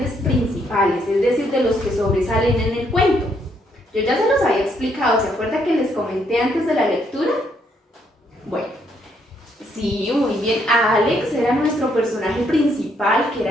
principales, es decir, de los que sobresalen en el cuento. Yo ya se los había explicado, ¿se acuerda que les comenté antes de la lectura? Bueno, Sí, muy bien. Alex era nuestro personaje principal, que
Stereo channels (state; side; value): normal; both; correlation 0.72